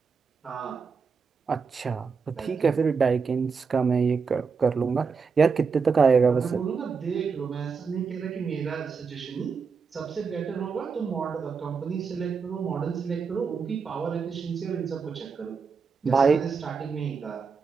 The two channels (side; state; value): left; quieter; 5.4 dB